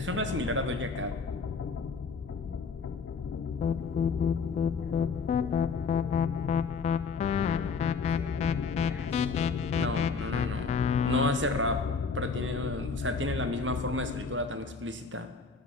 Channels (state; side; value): quieter; right; 4.9 dB